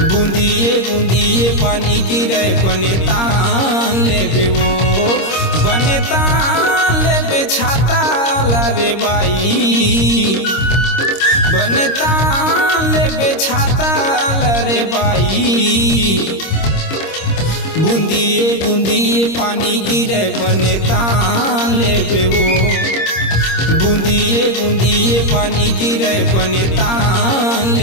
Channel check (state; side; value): late; right; 26 ms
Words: बूंदिए बूंदिए पानी गिरे बनता लेबे वो बनता लेबे छाता रे बाई बनता लेबे छाता रे बाई बूंदिए बूंदिए पानी गिरे बनता लेबे वो बूंदिए बूंदिए पानी गिरे बनता